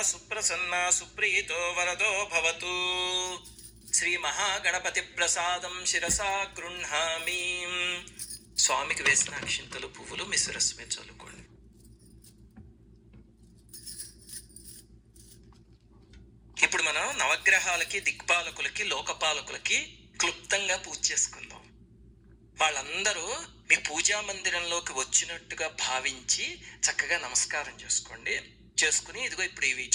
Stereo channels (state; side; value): identical; both; correlation 1.00